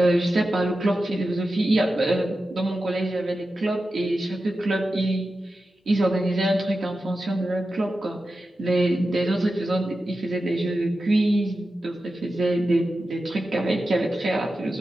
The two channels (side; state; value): both; normal; correlation 0.92